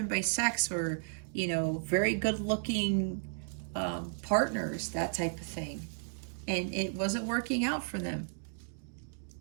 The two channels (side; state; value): left; silent; digital silence